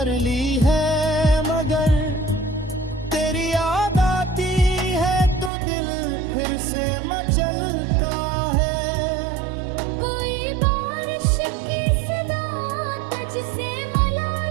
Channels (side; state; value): left; drops out; at 5.5 s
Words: ली है, मगर तेरी याद आती है तो दिल फिर से मचलता है। कोई बारिश की सदा तुझसे मिला